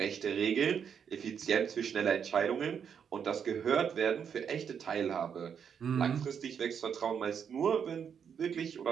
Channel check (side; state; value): left; quieter; 7.5 dB